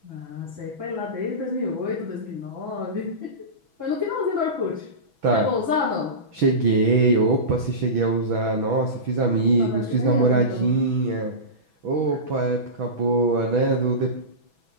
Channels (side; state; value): left; late; 6.1 ms